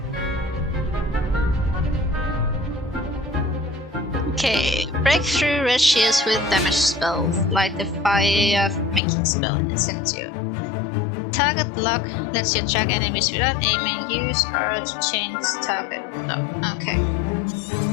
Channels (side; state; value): right; drops out; at 9.0 s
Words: Okay. Break through red shields with damage spells, like the fire making spell Incendio. Target lock lets you attack enemies without aiming. Use R to change target lock. Okay.